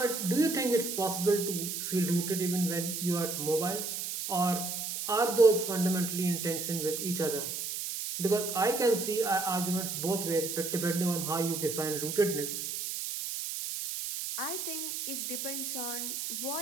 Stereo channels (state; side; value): noise; right; hiss, 4 dB below the sound